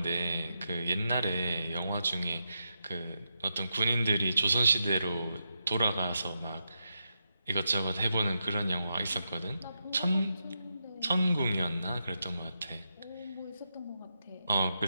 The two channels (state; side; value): inverted; both; correlation -0.85